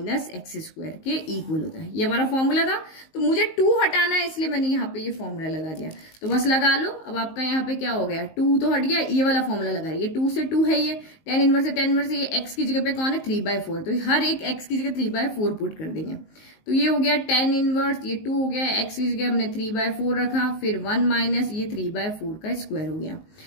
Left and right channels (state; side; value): late; right; 19 ms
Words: x square के इक्वल होता है। ये हमारा फॉर्मूला था, तो मुझे 2 हटाना है, इसलिए मैंने यहाँ पे ये फॉर्मूला लगा दिया। तो बस लगा लो, अब आपका यहाँ पे क्या हो गया, 2 तो हट गया, ये वाला फॉर्मूला लगा रही है, 2 से 2 है, ये tan इनवर्स से tan इनवर्स, ये x की जगह पे कौन है 3/4, तो हर एक x की जगह 3/4 पुट कर देंगे। तो ये हो गया tan इनवर्स, ये 2 हो गया, x की जगह हमने 3/4 रखा, फिर 1 माइनस ये 3/4 का स्क्वायर हो गया।